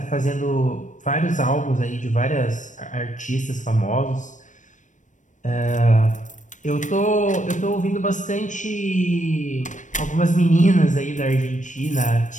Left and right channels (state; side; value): late; right; 0.37 ms